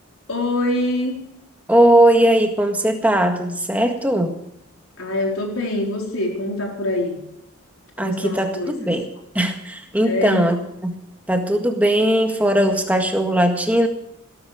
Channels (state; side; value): normal; both; correlation 0.71